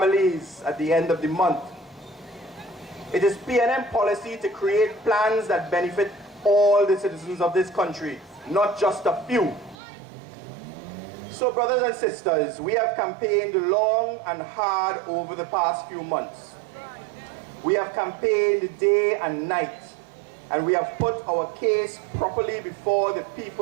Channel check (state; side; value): drops out; left; at 9.8 s